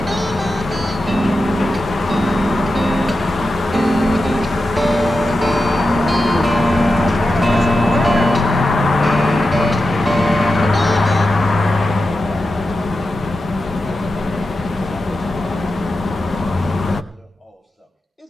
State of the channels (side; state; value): both; normal; correlation 0.90